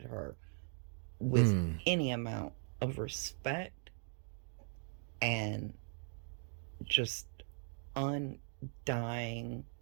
her with any amount of respect and just undying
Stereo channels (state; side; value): silent; left; 51 dB below the other